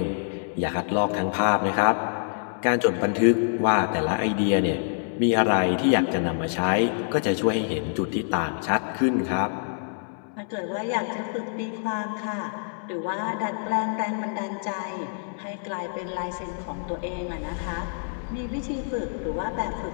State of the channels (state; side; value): silent; right; 61 dB below the other